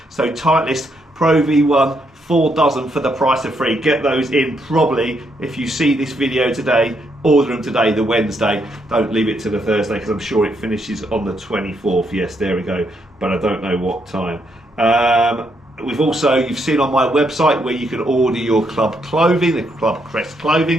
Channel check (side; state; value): both; normal; correlation 0.76